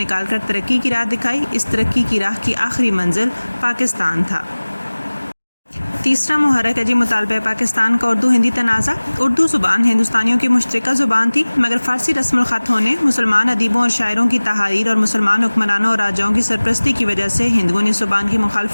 کر ترقی کی راہ دکھائی۔ اس ترقی کی راہ کی آخری منزل پاکستان تھا۔ تیسرا محرک ہے جی مطالبہ پاکستان کا اردو ہندی تنازع۔ اردو زبان ہندوستانیوں کی مشترکہ زبان تھی، مگر فارسی رسم الخط ہونے، مسلمان ادیبوں اور شاعروں کی تحاریر اور مسلمان حکمرانوں اور راجاؤں کی سرپرستی کی وجہ سے ہندوؤں نے زبان کی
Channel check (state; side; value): inverted; both; correlation -1.00